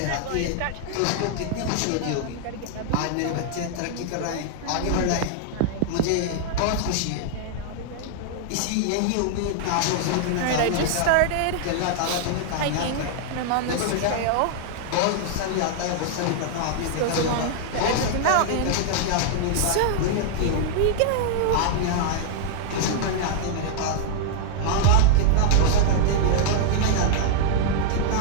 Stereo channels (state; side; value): different; both; correlation -0.01